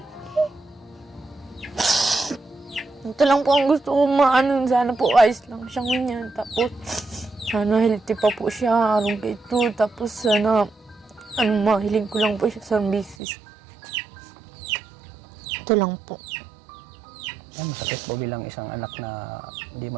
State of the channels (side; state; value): left; drops out; at 13.2 s